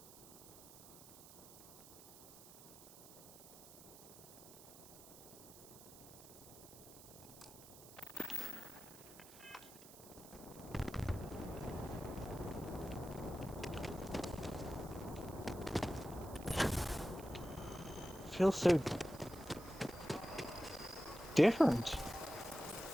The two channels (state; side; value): noise; right; hiss, 17 dB below the sound